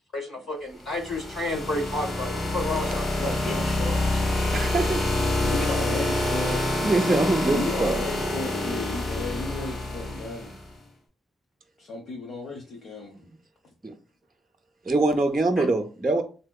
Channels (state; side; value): normal; both; correlation 0.80